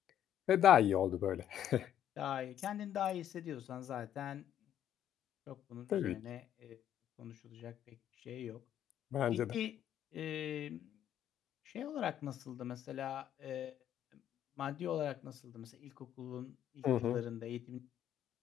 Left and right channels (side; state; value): right; quieter; 10.7 dB